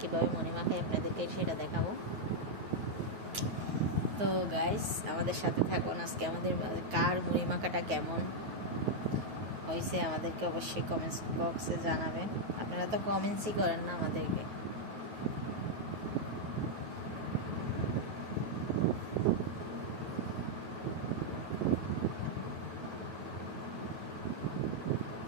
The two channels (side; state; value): left; late; 9.3 ms